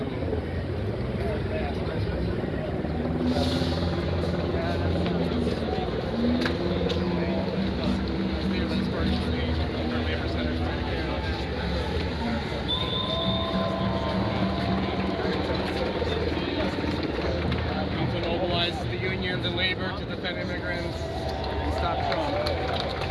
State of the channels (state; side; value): identical; both; correlation 1.00